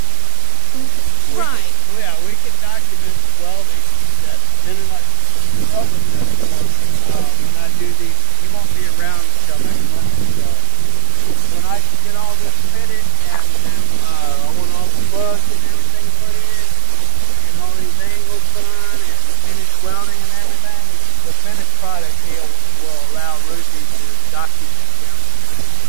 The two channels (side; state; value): both; different; correlation 0.00